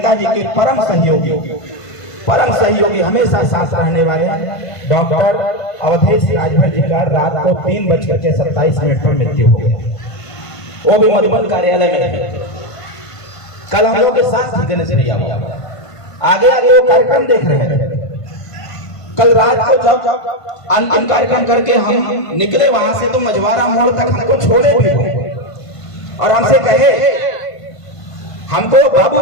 के परम सहयोगी हमेशा साथ रहने वाले डॉक्टर अवधेश राजभर जी का रात को 3:27 पर मृत्यु हो गया। वो भी मधुबन कार्यालय में। कल हम लोग के साथ थी गणेश भैया, आगे आगे वो कार्यक्रम देख रहे थे। कल रात को जब अंतिम कार्यक्रम करके हम निकले वहां से तो मझवारा मोड़ तक हमको छोड़े भी और हमसे कहे, हमको बाबू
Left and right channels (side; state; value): right; late; 1.5 ms